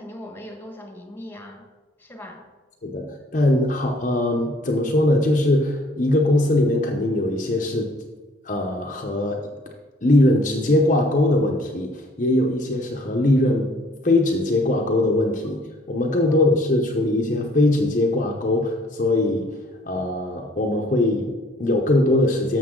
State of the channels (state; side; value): normal; both; correlation 0.59